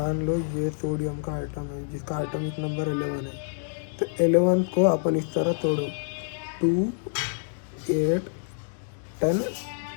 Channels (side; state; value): right; silent; digital silence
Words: लो ये सोडियम का आइटम है जिसका एटॉमिक नंबर 11 है, तो 11 को अपन इस तरह तोड़ो, 2, 8, 10,